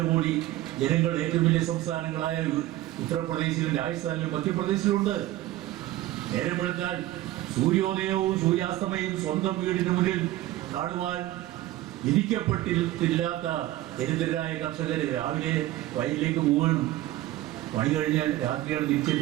ജനങ്ങൾ ഏറ്റവും വലിയ സംസ്ഥാനങ്ങളായ ഉത്തർപ്രദേശിലും രാജസ്ഥാനിലും മധ്യപ്രദേശിലുണ്ട്. നേരം വെളുത്താൽ സൂര്യോദയവും സൂര്യാസ്തമയവും സ്വന്തം വീടിന് മുന്നിൽ കാണുവാൻ വിധിക്കപ്പെട്ടില്ലാത്ത ദരിദ്രരായ കർഷകർ രാവിലെ വയലിലേക്ക് പോവുകയും പണി കഴിഞ്ഞാൽ രാത്രിയാണ്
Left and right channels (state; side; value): quieter; left; 15.7 dB